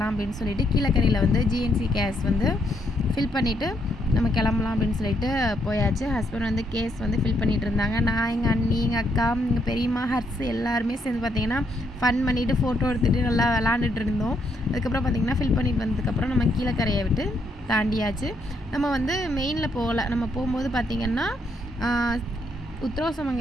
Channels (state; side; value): normal; both; correlation 0.75